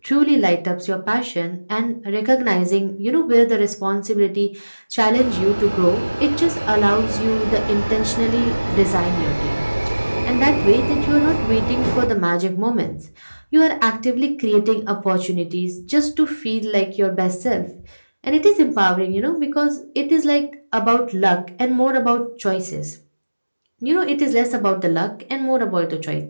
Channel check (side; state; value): both; inverted; correlation -1.00